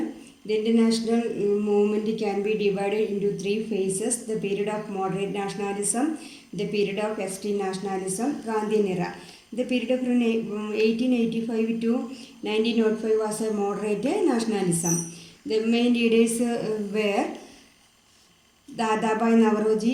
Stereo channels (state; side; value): identical; both; correlation 1.00